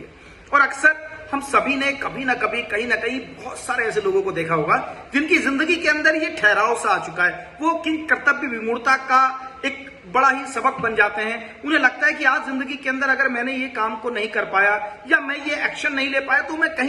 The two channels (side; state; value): both; identical; correlation 1.00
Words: और अक्सर हम सभी ने कभी ना कभी कहीं ना कहीं बहुत सारे ऐसे लोगों को देखा होगा जिनकी जिंदगी के अंदर ये ठहराव सा आ चुका है। वो कि कर्तव्य विमूढ़ता का एक बड़ा ही सबक बन जाते हैं। उन्हें लगता है कि आज जिंदगी के अंदर अगर मैंने ये काम को नहीं कर पाया या मैं ये एक्शन नहीं ले पाया तो मैं